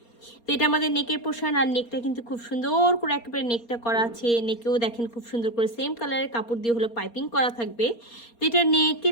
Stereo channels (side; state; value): right; late; 4.3 ms